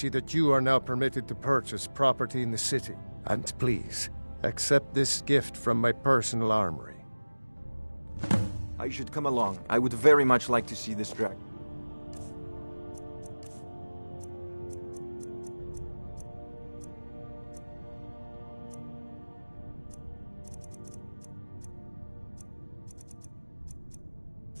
that you are now permitted to purchase property in the city. And please, accept this gift from my personal armory. I should come along. I would very much like to see this dragon.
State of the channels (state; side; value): inverted; both; correlation -1.00